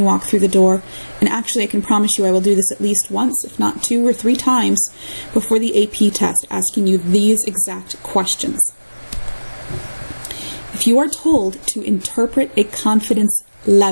walk through the door. And actually, I can promise you I will do this at least once, if not 2 or 3 times, before the AP test, asking you these exact questions. If you are told to interpret a confidence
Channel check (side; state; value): both; inverted; correlation -1.00